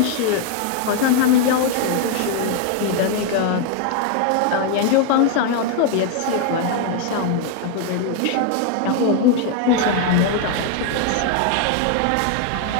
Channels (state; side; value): different; both; correlation 0.01